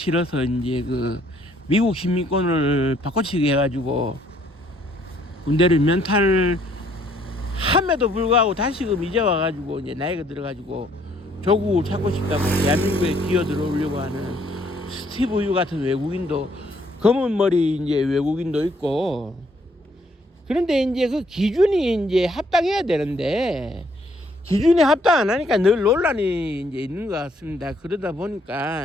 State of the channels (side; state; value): both; normal; correlation 0.66